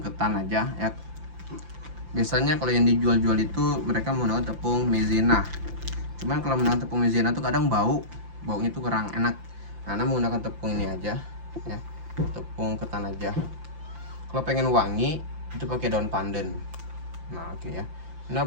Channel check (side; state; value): left; late; 5.8 ms